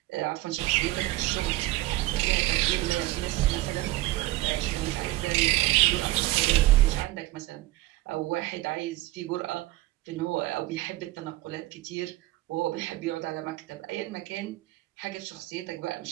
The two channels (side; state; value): left; quieter; 17.9 dB